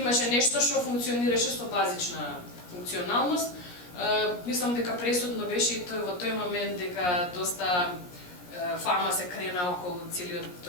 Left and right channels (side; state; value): right; late; 17 ms